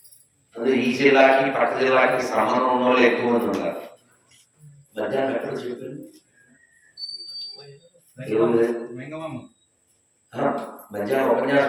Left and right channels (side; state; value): both; identical; correlation 1.00